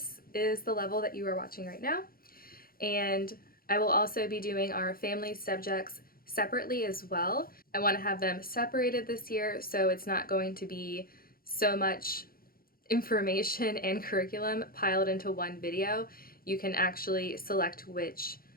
is the level that you are watching right now. And I will also be doing our family subjects separately as well. I want to have them separated this year, so it's not going to be so much information and curriculum piled into one video. You can actually select which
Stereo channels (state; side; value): late; right; 0.43 ms